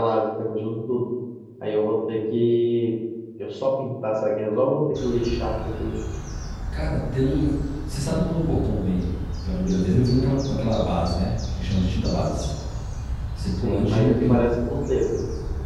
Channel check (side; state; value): both; identical; correlation 1.00